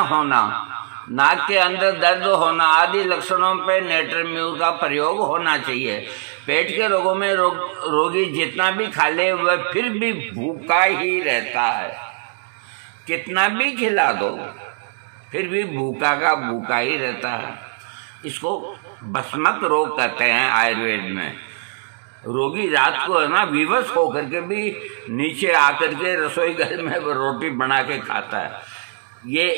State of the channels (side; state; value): left; silent; digital silence